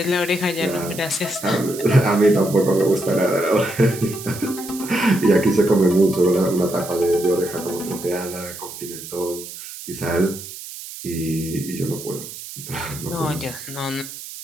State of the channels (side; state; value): right; noise; hiss, 12 dB below the sound